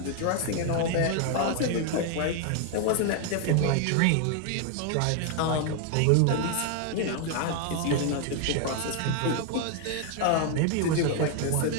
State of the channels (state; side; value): different; both; correlation 0.01